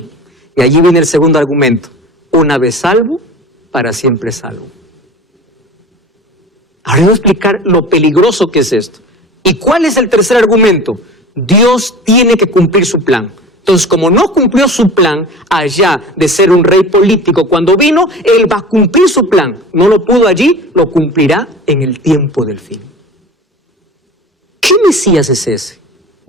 Y allí viene el segundo argumento. Una vez salvo, para siempre salvo. Ahora voy a explicar lo peligroso que es esto. ¿Y cuál es el tercer argumento? Dios tiene que cumplir su plan. Entonces, como no cumplió su plan allá de ser un rey político cuando vino, Él va a cumplir su plan. No lo pudo allí, lo cumplirá en el tiempo del fin. ¿Qué Mesías es ese?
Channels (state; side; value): normal; both; correlation 0.38